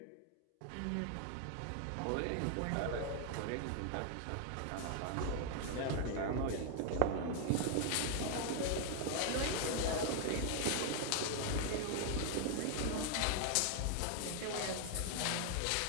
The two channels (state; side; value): different; both; correlation 0.00